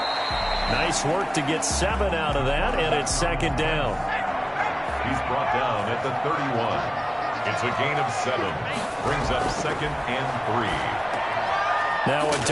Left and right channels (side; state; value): both; identical; correlation 1.00